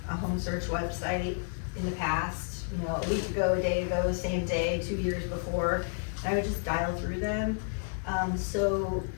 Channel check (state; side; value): silent; right; 57 dB below the other